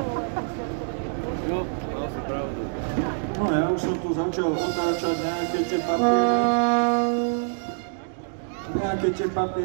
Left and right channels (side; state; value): left; silent; digital silence